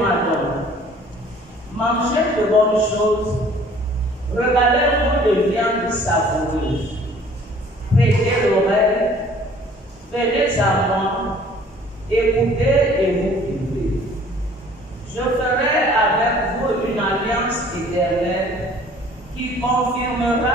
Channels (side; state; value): both; normal; correlation 0.53